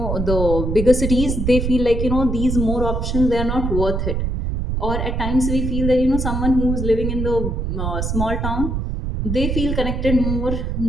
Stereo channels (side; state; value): right; noise; rumble, 1 dB below the sound